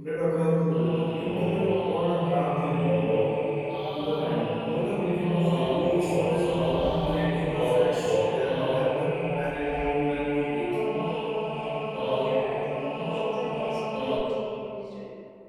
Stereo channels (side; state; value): both; identical; correlation 1.00